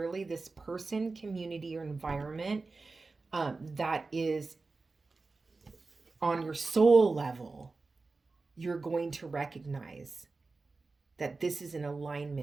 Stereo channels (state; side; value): quieter; left; 3.8 dB